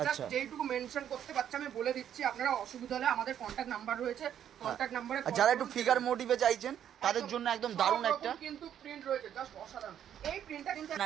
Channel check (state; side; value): quieter; left; 9.8 dB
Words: জাস্ট যেইটুকু মেনশন করতে পারছি আমি বলে দিচ্ছি। আপনারা অসুবিধা হলে আমাদের কন্টাক্ট নাম্বার রয়েছে, কন্টাক্ট নাম্বারে যারা একটু ফিগার মোটিভে চাইছেন তাদের জন্য একদম দারুণ একটা কিন্তু প্রিন্ট রয়েছে, জাস্ট অসাধারণ। এই প্রিন্টটা কিন্তু